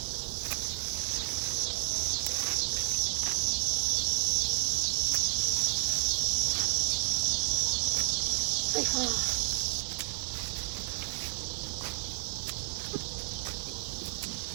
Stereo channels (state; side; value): silent; left; 57 dB below the other